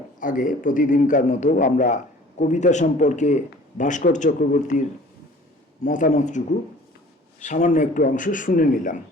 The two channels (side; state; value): both; normal; correlation 0.49